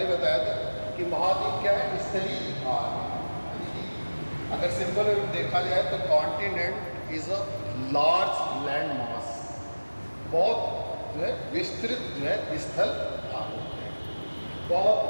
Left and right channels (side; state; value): both; inverted; correlation -1.00